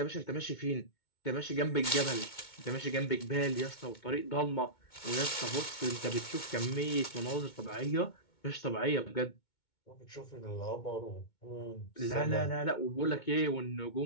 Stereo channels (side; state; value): right; late; 2.2 ms